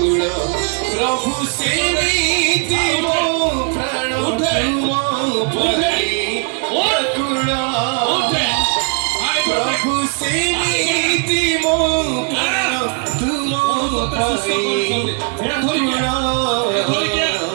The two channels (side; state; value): left; quieter; 39.8 dB